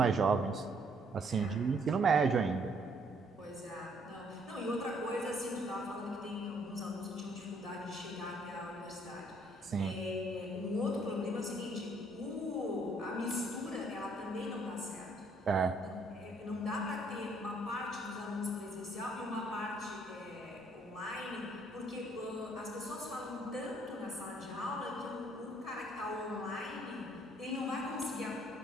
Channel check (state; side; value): normal; both; correlation 0.66